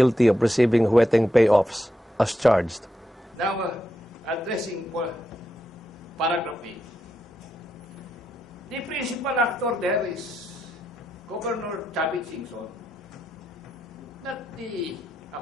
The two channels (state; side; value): normal; both; correlation 0.84